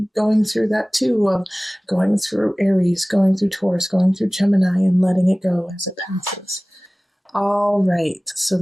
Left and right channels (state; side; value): normal; both; correlation 0.98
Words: going through that too, of going through Aries, going through Taurus, going through Gemini, and letting it go as it passes. All right, so